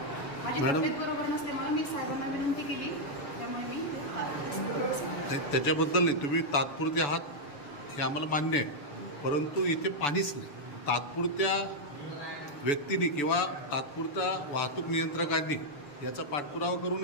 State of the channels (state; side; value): late; right; 6.9 ms